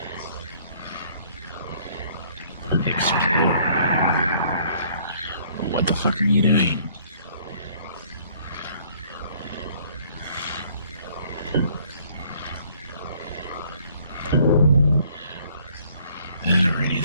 Explore. What the fuck are you doing? Alrighty,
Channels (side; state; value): both; inverted; correlation -0.60